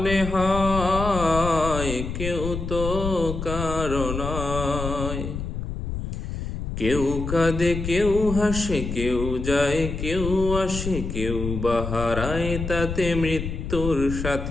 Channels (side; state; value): left; noise; rumble, 5 dB below the sound